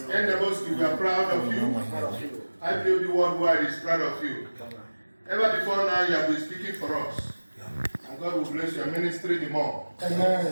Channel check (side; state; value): both; inverted; correlation -1.00